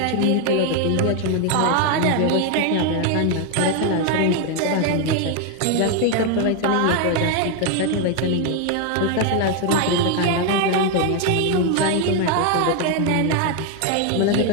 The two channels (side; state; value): both; different; correlation 0.01